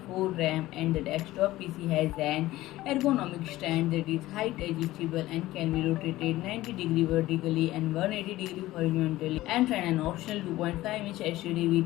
RAM, and the desktop PC has an ergonomic stand that is height adjustable and can be rotated 90 degrees vertically and 180 degrees horizontally, and friend, an optional 2.5-inch HDD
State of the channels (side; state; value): right; quieter; 16.7 dB